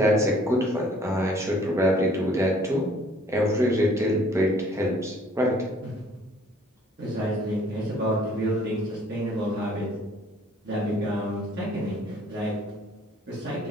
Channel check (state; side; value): normal; both; correlation 0.57